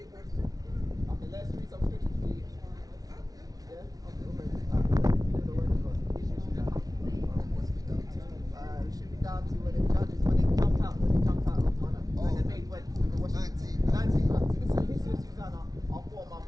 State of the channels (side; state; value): left; late; 0.18 ms